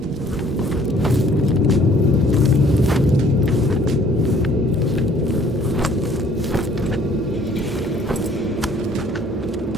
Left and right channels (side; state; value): both; normal; correlation 0.58